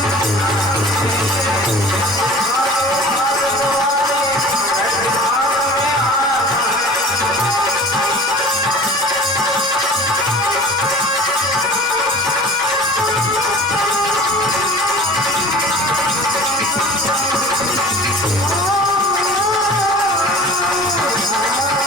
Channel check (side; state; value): both; normal; correlation 0.42